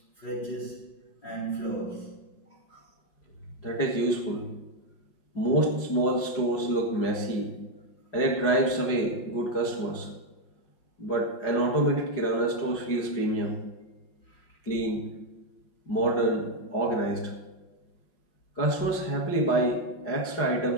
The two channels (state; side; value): late; right; 5.5 ms